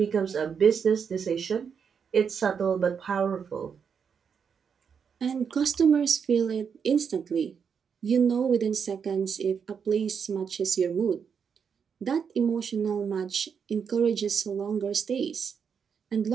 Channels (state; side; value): quieter; left; 6.7 dB